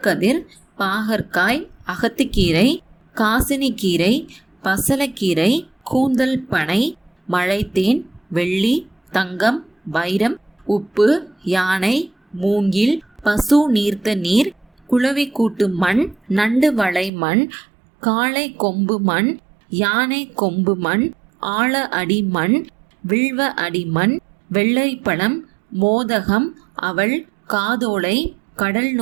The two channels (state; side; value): drops out; left; at 17.1 s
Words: பாகற்காய், அகத்திக்கீரை, காசினிக்கீரை, பசலக்கீரை, கூந்தல் பனை, மழைத்தேன், வெள்ளி, தங்கம், வைரம், உப்பு, யானை, மூங்கில், பசு நீர்த்த நீர், குளவி கூட்டு மண், நண்டு வளை மண், காளை கொம்பு மண், யானை கொம்பு மண், ஆழ அடி மண், வில்வ அடி மண், வெள்ளரிப்பழம், மோதகம், அவள், காதோலை, கடல்